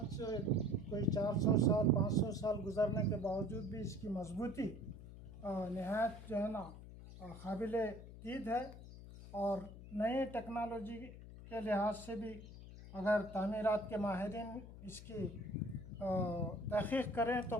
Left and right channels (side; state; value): left; noise; hum, 14 dB below the sound